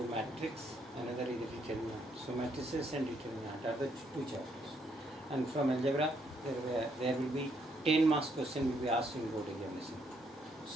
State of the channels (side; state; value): both; normal; correlation 0.73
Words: matrix, another is the determinant. So matrices and determinant are the two chapters. And from algebra there will be 10 marks question will be asked in board examination.